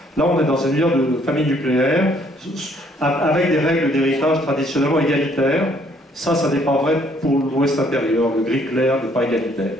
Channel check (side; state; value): both; normal; correlation 0.65